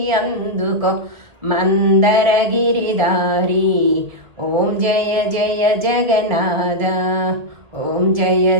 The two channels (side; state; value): left; late; 1.9 ms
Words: అందుకో, మందరగిరిదారి. ఓం జయ జయ జగన్నాథ, ఓం జయ